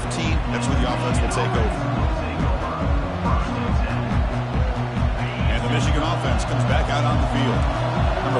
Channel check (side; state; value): both; identical; correlation 1.00